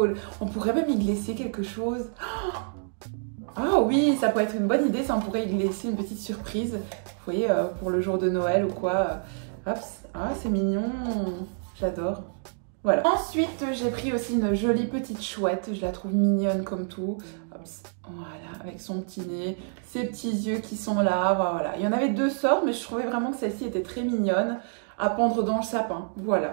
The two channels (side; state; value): left; silent; digital silence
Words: On pourrait même y glisser quelque chose. Ah oui, ça pourrait être une bonne idée. Ça, on pourrait y glisser une petite surprise. Vous voyez, pour le jour de Noël ou quoi. Hop. Ah, c'est mignon. J'adore. Voilà. Ensuite, j'ai pris aussi une jolie petite chouette. Je la trouve mignonne comme tout. Hop, voilà, avec son petit nez, ses petits yeux qui sont là. Voilà. Il y en avait deux sortes, mais je trouvais vraiment que celle-ci était très mignonne à pendre dans le sapin. Voilà,